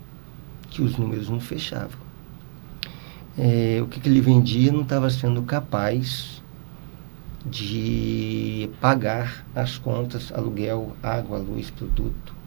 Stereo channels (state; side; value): silent; left; digital silence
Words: O que ele vendia não estava sendo capaz de pagar as contas, aluguel, água, luz, produto.